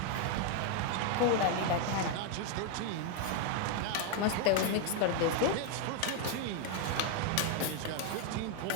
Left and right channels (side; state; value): both; different; correlation 0.01